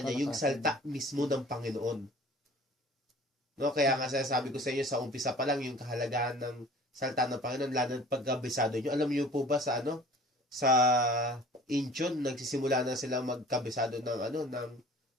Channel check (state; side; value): normal; both; correlation 0.47